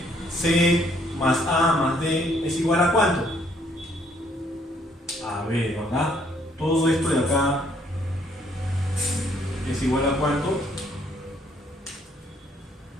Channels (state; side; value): normal; both; correlation 0.66